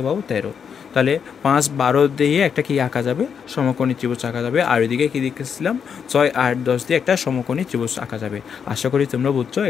পাবো? 13। তাহলে 5 12 দিয়ে একটা কি আঁকা যাবে? সমকোণী ত্রিভুজ আঁকা যাবে। আর ওইদিকে কী দেখেছিলাম? 6 8 10 দিয়ে একটা সমকোণী ত্রিভুজ আঁকা যাবে। আশা করি তোমরা বুঝছো।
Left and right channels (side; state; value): right; quieter; 7.0 dB